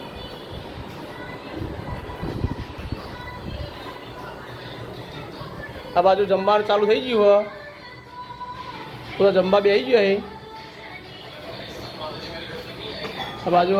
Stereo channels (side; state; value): both; identical; correlation 1.00